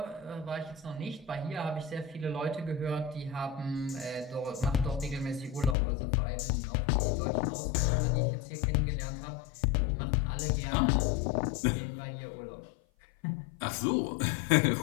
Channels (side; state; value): right; drops out; at 5.8 s